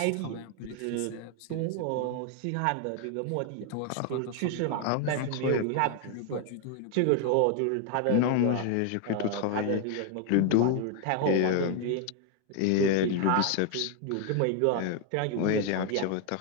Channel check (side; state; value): both; different; correlation 0.00